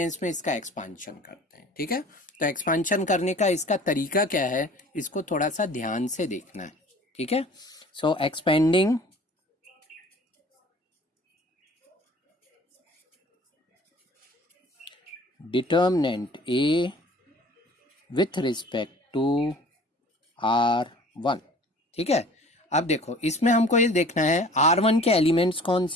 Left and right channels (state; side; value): normal; both; correlation 0.48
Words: में इसका एक्सपांशन करते हैं, ठीक है। तो एक्सपांशन करने का इसका तरीका क्या है, इसको थोड़ा सा ध्यान से देखना है, ठीक है। So expanding determinant A with respect to R1, ठीक है। अब देखो इसमें हमको ये देखना है R1 के एलिमेंट्स कौन